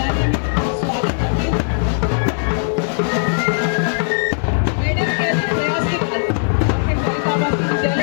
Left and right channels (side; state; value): right; silent; digital silence